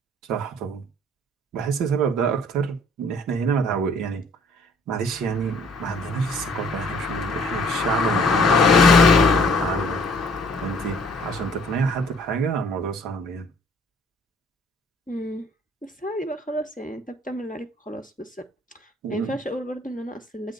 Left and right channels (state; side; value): normal; both; correlation 0.58